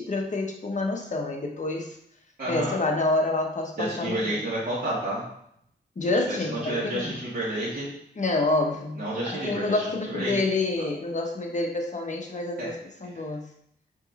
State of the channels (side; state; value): both; normal; correlation 0.40